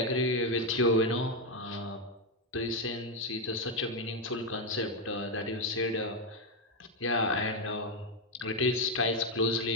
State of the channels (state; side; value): normal; both; correlation 0.05